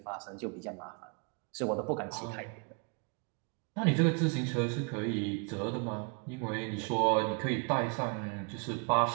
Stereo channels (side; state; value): left; quieter; 35.8 dB